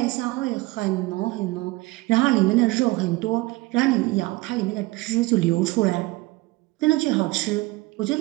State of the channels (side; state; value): left; quieter; 21.4 dB